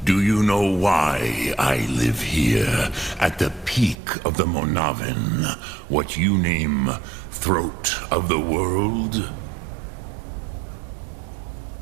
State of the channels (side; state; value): left; drops out; at 4.0 s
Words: Do you know why I live here, at the peak of the Monavin, what you name Throat of the World?